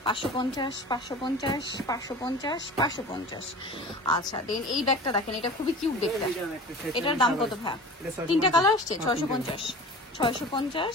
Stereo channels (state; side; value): normal; both; correlation 0.38